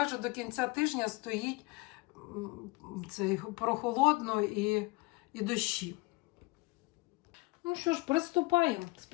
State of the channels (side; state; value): right; quieter; 24.0 dB